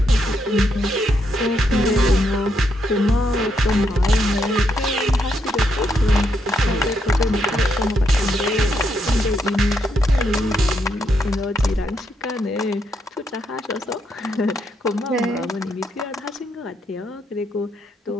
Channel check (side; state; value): both; normal; correlation 0.78